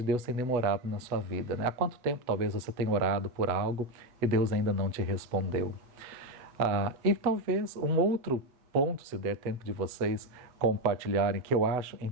Deus tem demorado na sua vida, né? Há quanto tempo talvez você tenha orado por algo e Deus ainda não te respondeu? E talvez um outro ponto, se der tempo de vocês compartilharem, que eu acho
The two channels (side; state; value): left; late; 8.0 ms